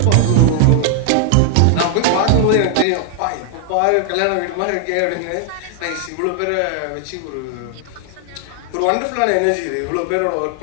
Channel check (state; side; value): different; both; correlation 0.00